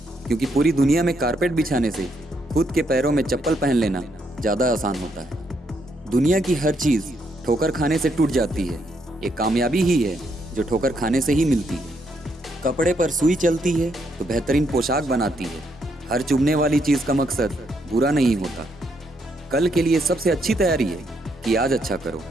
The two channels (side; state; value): both; normal; correlation 0.76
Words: क्योंकि पूरी दुनिया में कारपेट बिछाने से खुद के पैरों में चप्पल पहन लेना ज़्यादा आसान होता है। दुनिया की हर चीज़ ठोकर खाने से टूट जाती है, एक कामयाबी ही है जो ठोकर खाने से ही मिलती है। कपड़े पर सुई चलती है तो बेहतरीन पोशाक बनाती है। हर चुभने वाली चीज़ का मकसद बुरा नहीं होता। कल के लिए सबसे अच्छी तैयारी है कि आज अच्छा करो।